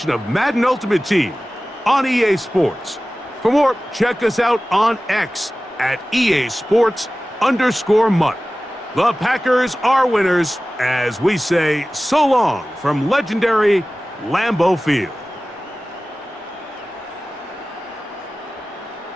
of Madden Ultimate Team on EA Sports. For more, check us out on X at EA Sports_Mutt. The Packers are winners as we say so long from legendary Lambeau Field.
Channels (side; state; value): both; normal; correlation 0.97